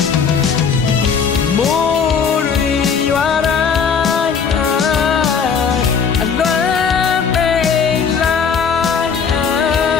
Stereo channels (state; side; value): quieter; right; 6.3 dB